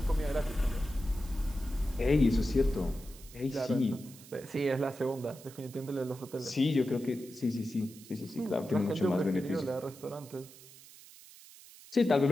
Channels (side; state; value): right; noise; hiss, 20 dB below the sound